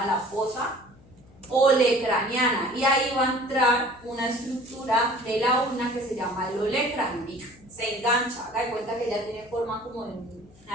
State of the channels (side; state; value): left; noise; hum, 26 dB below the sound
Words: la fosa olecraniana, y ahí va a entrar una estructura de la ulna que se llama el olecrano. Se engancha, haga de cuenta que ya tiene forma como de